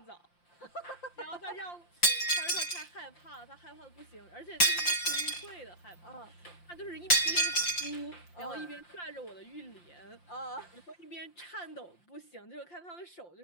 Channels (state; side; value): late; right; 5.7 ms